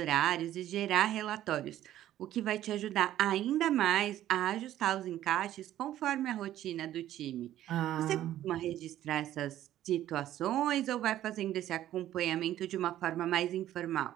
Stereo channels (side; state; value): left; quieter; 12.8 dB